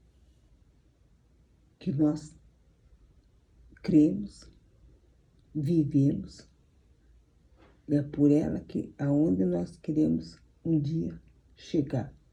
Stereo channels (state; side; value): identical; both; correlation 1.00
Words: que nós cremos, vivemos, e é por ela que aonde nós queremos um dia chegar,